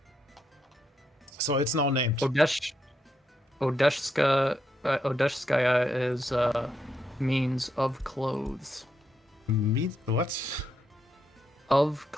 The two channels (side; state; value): both; normal; correlation 0.80